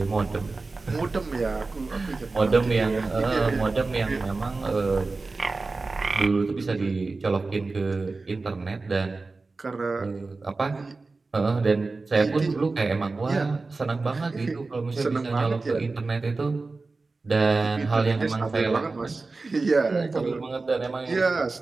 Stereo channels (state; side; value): quieter; left; 3.7 dB